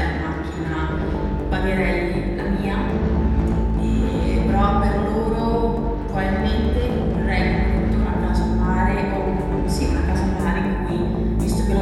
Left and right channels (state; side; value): identical; both; correlation 1.00